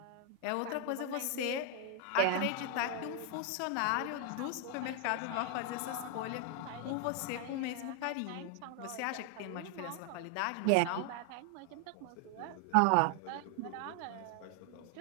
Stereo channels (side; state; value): both; different; correlation 0.00